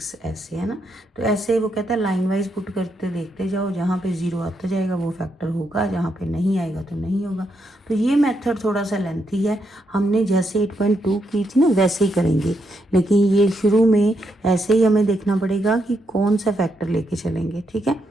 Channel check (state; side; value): normal; both; correlation 0.80